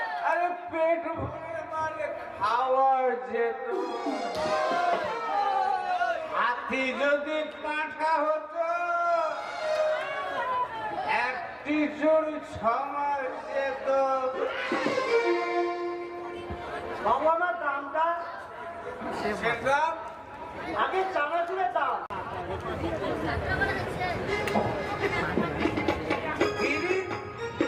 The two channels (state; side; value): identical; both; correlation 1.00